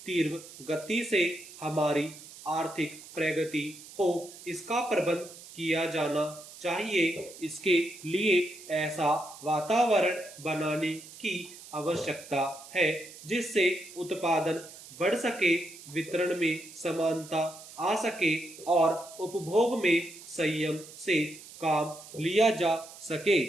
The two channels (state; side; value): noise; right; hiss, 17 dB below the sound